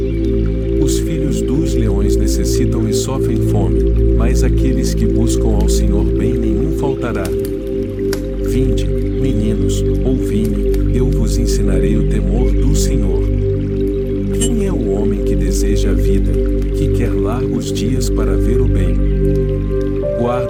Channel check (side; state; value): both; identical; correlation 1.00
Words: Os filhos dos leões necessitam e sofrem fome, mas aqueles que buscam ao Senhor bem nenhum faltará. Vinde, meninos, ouvi-me, eu vos ensinarei o temor do Senhor. Quem é o homem que deseja a vida, que quer largos dias para ver o bem?